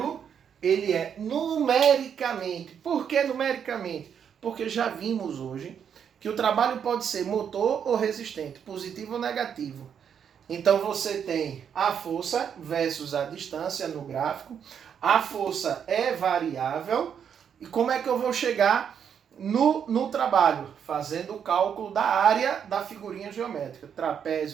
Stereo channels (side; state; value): left; quieter; 7.9 dB